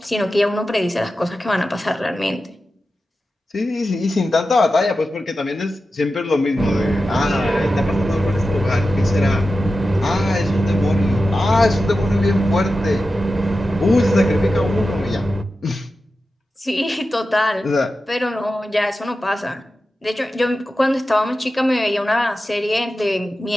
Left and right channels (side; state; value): both; normal; correlation 0.92